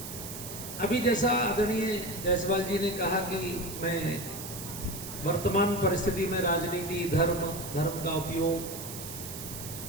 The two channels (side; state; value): right; noise; hiss, 9 dB below the sound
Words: अभी जैसा आदरणीय जायसवाल जी ने कहा कि मैं वर्तमान परिस्थिति में राजनीति, धर्म, धर्म का उपयोग,